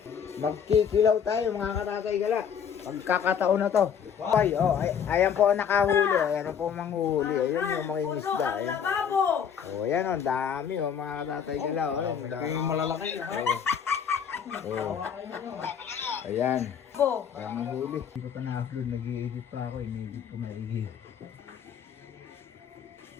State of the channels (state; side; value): quieter; right; 7.7 dB